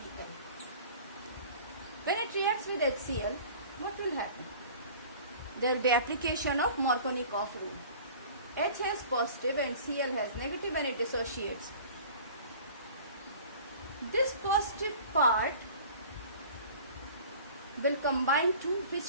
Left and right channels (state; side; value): inverted; both; correlation -0.44